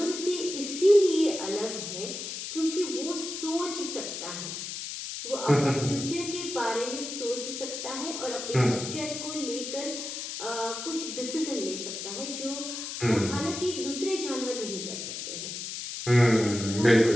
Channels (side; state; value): left; noise; hiss, 6 dB below the sound